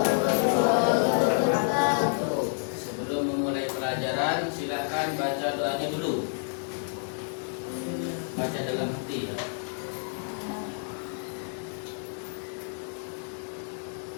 wabarakatuh. Sebelum memulai pelajaran, silakan baca doanya dulu. Baca dalam hati ya.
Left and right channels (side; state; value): right; silent; digital silence